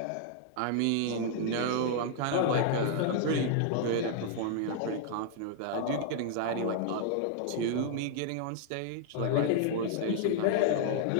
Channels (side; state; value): both; different; correlation -0.01